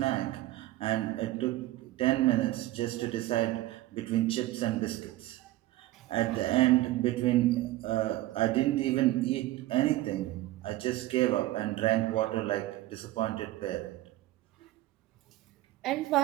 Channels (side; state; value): left; quieter; 16.4 dB